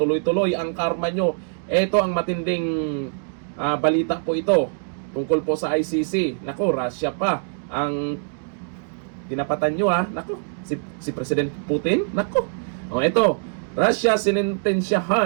ang karma nyo. Ito ang matinding balita po ito tungkol po sa ICC. Nako, Russia pa ang tinapatan nyo ha. Nako, si President Putin. Nako, o ito, Russia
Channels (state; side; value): silent; left; digital silence